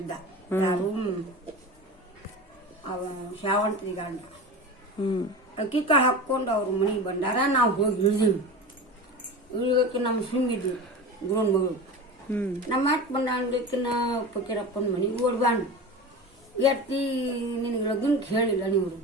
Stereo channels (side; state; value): both; normal; correlation 0.30